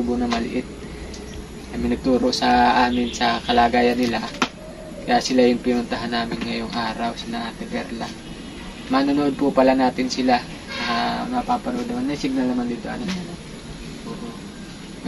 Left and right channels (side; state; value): both; identical; correlation 1.00